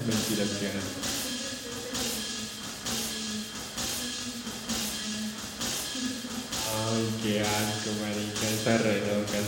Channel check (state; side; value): identical; both; correlation 1.00